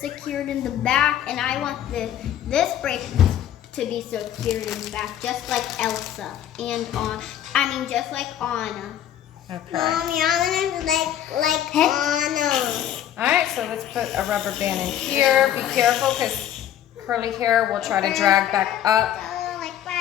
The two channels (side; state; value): right; quieter; 11.0 dB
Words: secured in the back, and I want this braid to be secured in the back, just like Elsa and just like Anna. Okay. Mommy, I want to like Anna. All right, so let's put a rubber band in here. Be careful because curly hair will try to drag back up. Oh, like